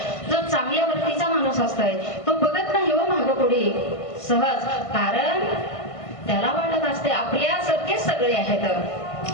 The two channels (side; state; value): right; late; 1.5 ms